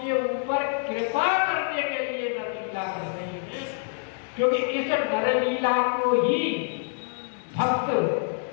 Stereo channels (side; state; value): right; silent; 59 dB below the other